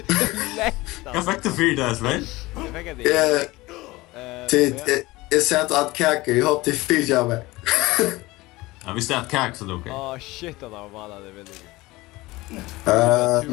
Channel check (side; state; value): right; quieter; 20.3 dB